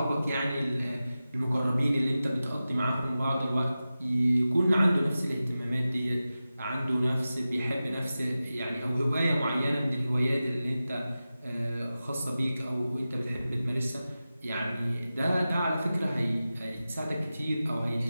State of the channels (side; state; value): both; inverted; correlation -0.94